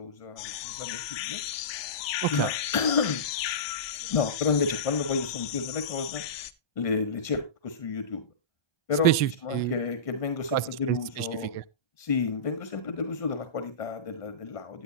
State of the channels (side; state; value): right; late; 1.7 ms